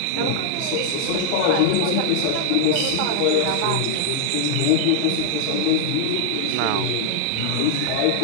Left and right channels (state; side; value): different; both; correlation 0.00